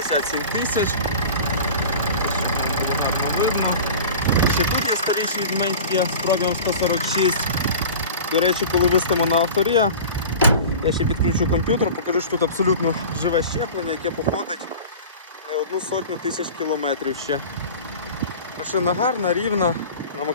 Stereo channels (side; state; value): both; inverted; correlation -0.37